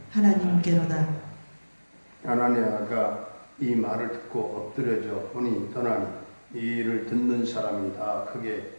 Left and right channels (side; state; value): both; inverted; correlation -1.00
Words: 하나님께로다. 아나니아가 이 말을 듣고 엎드려져 혼이 떠나니 이 일을 듣는 사람이 다